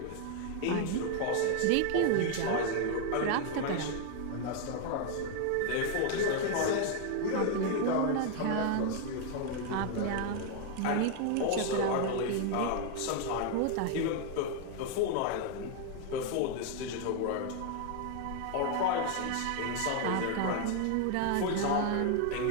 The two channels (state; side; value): different; both; correlation 0.01